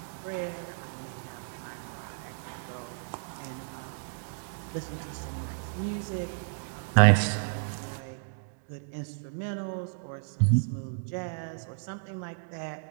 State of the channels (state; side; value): silent; left; digital silence